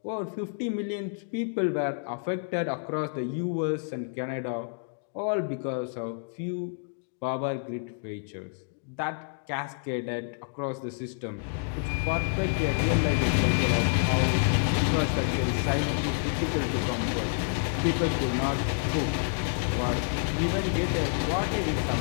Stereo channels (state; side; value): silent; right; digital silence